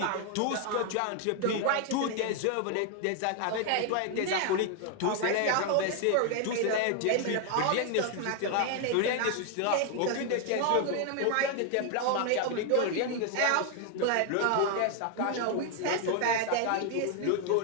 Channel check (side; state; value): both; different; correlation 0.00